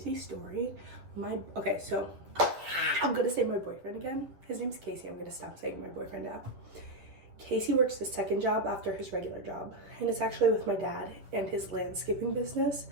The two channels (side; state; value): left; late; 10 ms